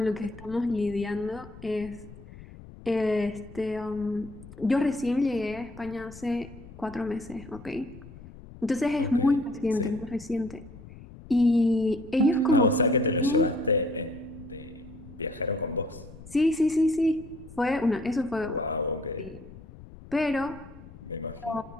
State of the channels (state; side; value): noise; left; rumble, 17 dB below the sound